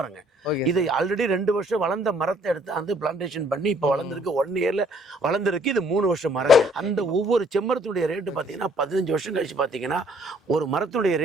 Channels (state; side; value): normal; both; correlation 0.61